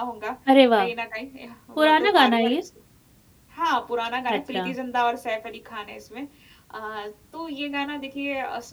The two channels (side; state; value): both; identical; correlation 1.00